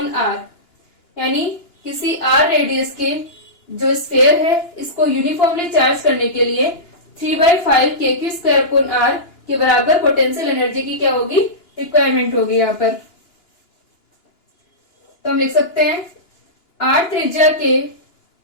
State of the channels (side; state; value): right; late; 2.9 ms